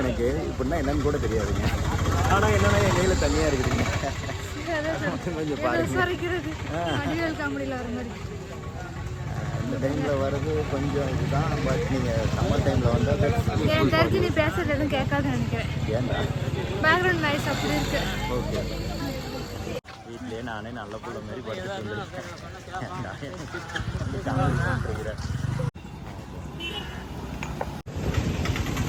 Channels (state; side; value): identical; both; correlation 1.00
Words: எனக்கு இப்படின்னா என்னன்னு கூட தெரியாதுங்க ஆனால் என்னன்னா என் கையில் தனியாக இருக்குதுங்க கொஞ்சம் பாருங்க இந்த டைமில் வர்றது கொஞ்சம் இதுதான் பட் நீங்கள் சம்மர் டைமில் வந்து என் தெரிஞ்சு நீ பேசுறது எதுவும் கேட்காதுன்னு நினைக்கிறேன் ஏன்டா பேக்ரவுண்ட் நாய்ஸ் அப்படி இருக்கு ஓகே வீட்டிலே நானே நல்ல பிள்ளை மாதிரி படுத்துட்டு